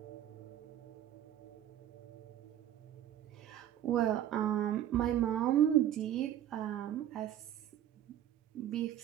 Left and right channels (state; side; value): quieter; left; 11.3 dB